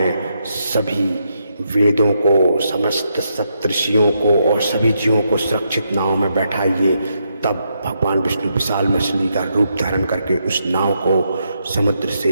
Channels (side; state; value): both; inverted; correlation -0.80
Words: सभी वेदों को, समस्त सप्तऋषियों को और सभी जीवों को सुरक्षित नाव में बैठाइए। तब भगवान विष्णु विशाल मछली का रूप धारण करके उस नाव को समुद्र